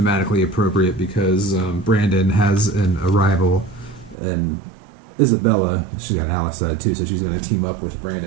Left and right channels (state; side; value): drops out; left; at 4.2 s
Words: appropriate because Brandon has a rival, and Isabella, she's got an ally side too, so she's going to team up with